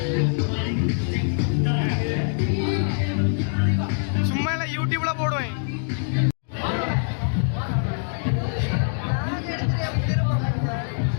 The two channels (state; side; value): silent; right; 63 dB below the other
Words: சும்மா இல்லை யூடியூப்ல போடுவேன்.